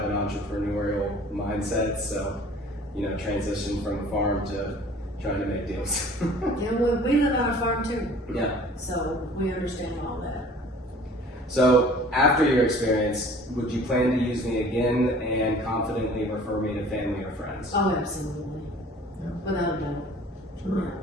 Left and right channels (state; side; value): normal; both; correlation 0.48